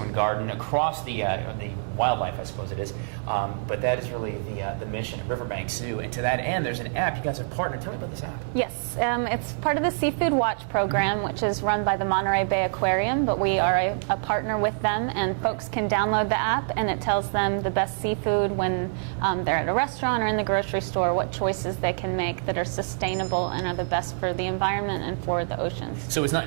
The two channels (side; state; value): left; silent; digital silence